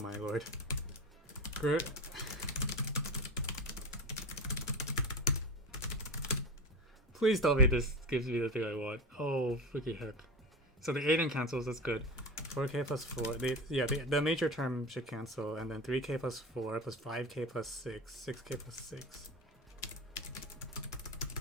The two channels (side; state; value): both; normal; correlation 0.25